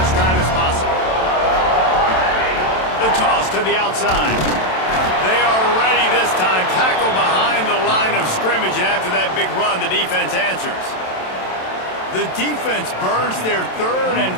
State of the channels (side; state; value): right; late; 27 ms